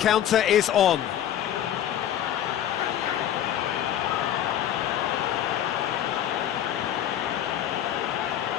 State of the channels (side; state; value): right; quieter; 10.9 dB